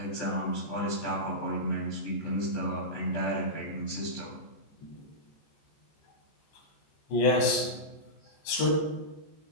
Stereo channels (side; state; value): right; late; 14 ms